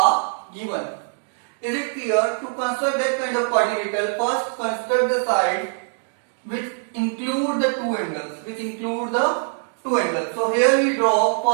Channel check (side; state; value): left; silent; 64 dB below the other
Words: given. Is it clear? To construct that kind of quadrilateral, first construct the side which include the two angles. So here we draw